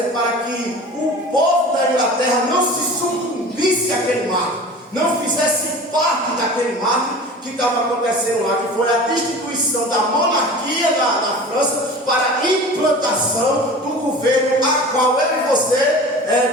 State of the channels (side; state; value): both; normal; correlation 0.38